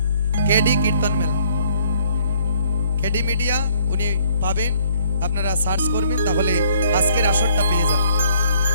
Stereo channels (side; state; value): both; inverted; correlation -0.63